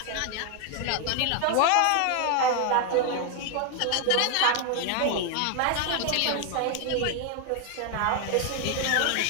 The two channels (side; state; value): both; different; correlation 0.01